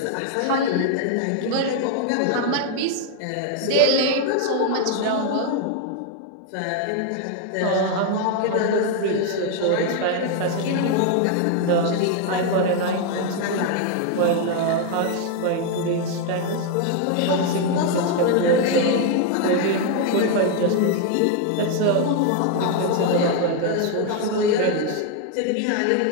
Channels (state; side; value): different; both; correlation 0.00